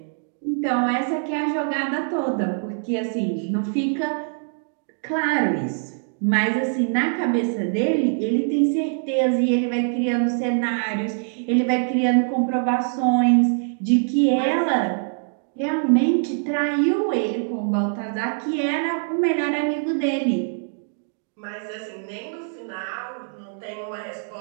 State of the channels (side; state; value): left; silent; digital silence